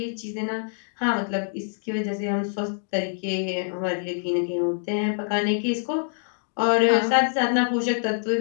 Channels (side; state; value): right; silent; digital silence